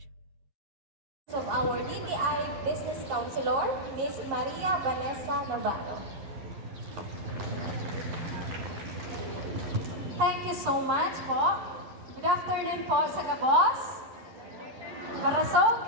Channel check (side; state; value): left; late; 11 ms